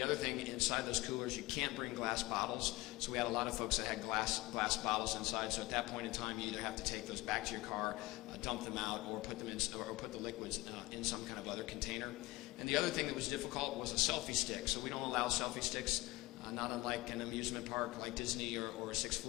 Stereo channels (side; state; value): right; quieter; 20.5 dB